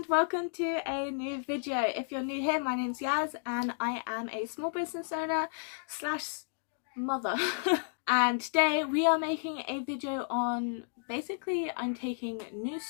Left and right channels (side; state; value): right; silent; digital silence